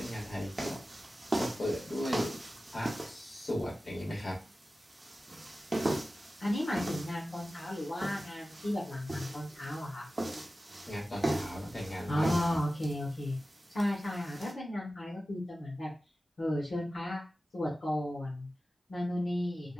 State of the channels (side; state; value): both; normal; correlation 0.95